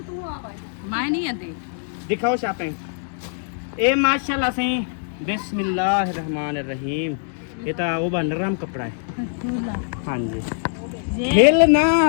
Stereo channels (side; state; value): right; silent; digital silence